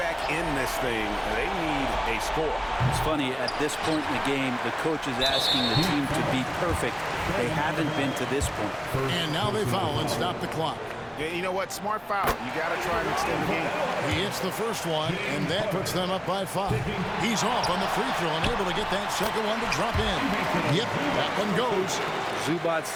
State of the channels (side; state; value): both; identical; correlation 1.00